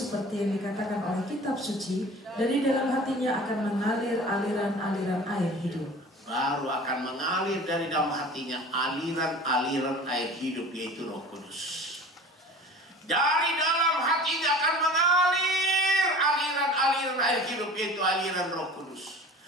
yang dikatakan oleh kitab suci, dari dalam hatinya akan mengalir aliran-aliran air hidup. Baru akan mengalir dari dalam hatinya aliran-aliran air hidup, yaitu Roh Kudus. Dari dalam hatinya akan mengalir aliran-aliran air hidup, yaitu aliran Roh Kudus.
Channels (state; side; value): normal; both; correlation 0.41